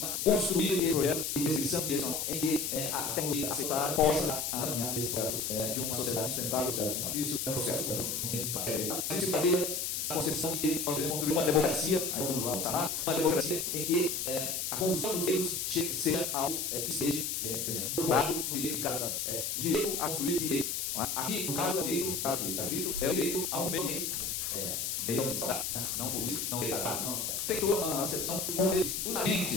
construir esse projeto de decisão direcional em que a tecnologia aceitar possa alinhar nesse processo de uma sociedade sustentável. Isso é um processo que fazer a concepção de que nós devemos construir uma democracia, uma democracia em que a construção dos direitos seja algo que seja formado no direito de cada o direito a construir direito. Aqui, no caso do direito, é o direito a um meio ambiente. Não poluir, não degradar, não. Tem toda uma acepção com os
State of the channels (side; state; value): left; noise; hiss, 1 dB below the sound